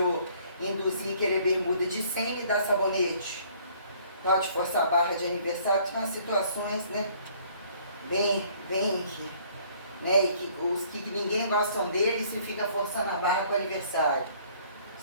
induzir querer bermuda de 100 e dar sabonete, tal, de forçar a barra de aniversário. Tem umas situações, né, bem que, né, e que os que ninguém gostam deles se fica forçando a barra com o aniversário.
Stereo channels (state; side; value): inverted; both; correlation -0.59